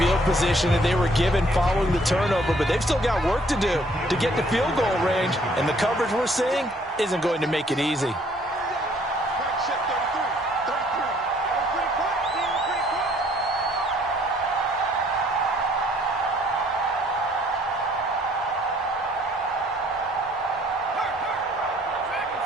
position that they were given following the turnover, but they've still got work to do to get to field goal range, and the coverage we're seeing isn't going to make it easy.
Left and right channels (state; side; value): normal; both; correlation 0.61